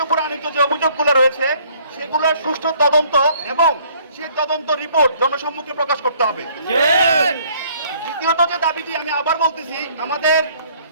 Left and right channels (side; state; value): both; inverted; correlation -0.60